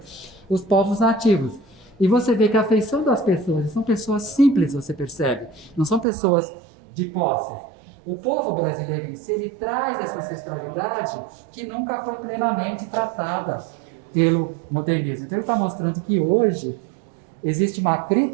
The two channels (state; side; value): drops out; left; at 6.1 s